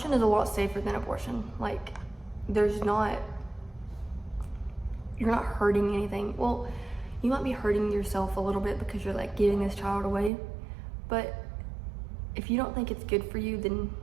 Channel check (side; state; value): left; drops out; at 10.3 s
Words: is a lot safer than abortion. Like, you're not hurting anything. Well, you might be hurting yourself a little bit because you're like giving this child away, but if you don't think it's good for you, then